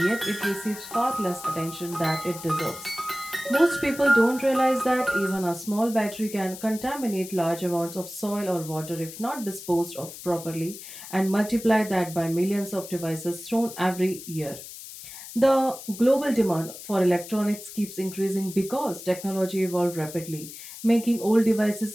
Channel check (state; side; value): noise; left; hiss, 13 dB below the sound